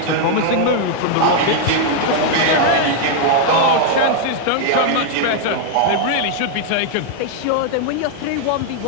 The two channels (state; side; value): different; both; correlation 0.00